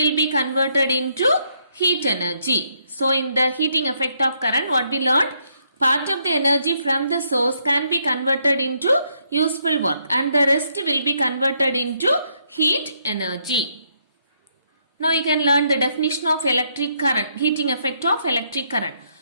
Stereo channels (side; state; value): both; inverted; correlation -0.73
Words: be converted into heat energy. So in the heating effect of current what we learned, part of the energy from the source can be converted into useful work and the rest will be converted into heat energy. Now you can learn the definition of electric current, heating effect of electric current.